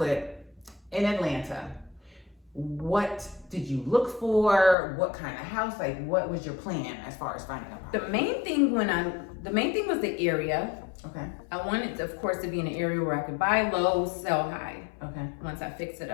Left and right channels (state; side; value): drops out; right; at 4.8 s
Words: in Atlanta. What did you look for? What kind of house? Like, what was your plan as far as finding a property? The main thing was the area. Okay. I wanted, of course, to be in an area where I could buy low, sell high. Okay. Once I fix it